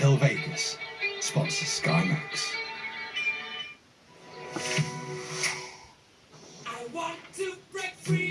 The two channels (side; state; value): both; identical; correlation 1.00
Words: Vegas sponsors Sky Max.